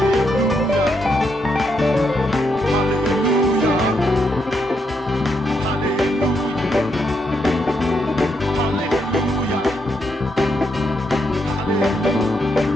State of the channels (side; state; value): both; normal; correlation 0.79